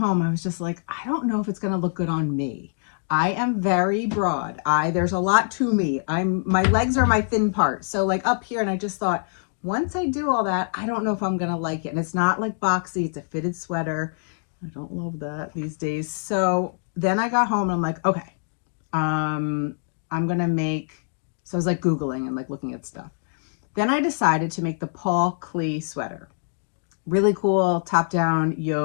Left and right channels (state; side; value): silent; right; 62 dB below the other